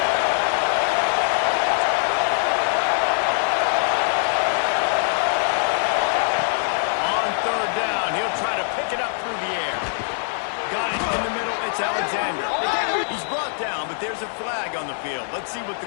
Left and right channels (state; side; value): silent; right; digital silence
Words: On third down, he'll try to pick it up through the air. Got it in the middle. It's Alexander. He's brought down, but there's a flag on the field. Let's see what the